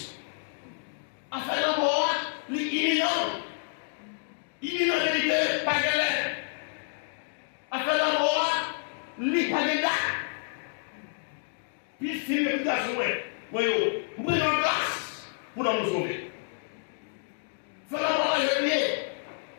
à faire la mort, l'imminent vérité, pas galère. À faire la mort, l'hypagéda. Puis il filme le garçon, voyez, vous prenez en place pour nous sauver. Faire la mort à jeunier.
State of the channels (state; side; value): silent; right; digital silence